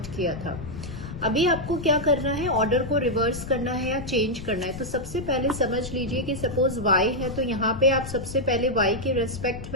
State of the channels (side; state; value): left; noise; rumble, 10 dB below the sound